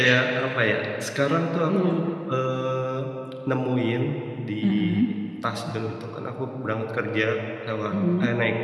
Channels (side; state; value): both; identical; correlation 1.00